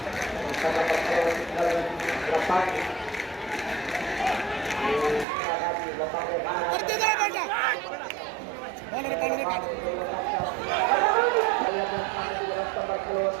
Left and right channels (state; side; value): drops out; left; at 5.2 s